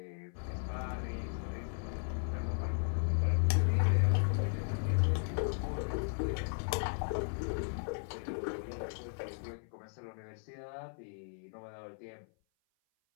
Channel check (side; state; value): right; silent; 54 dB below the other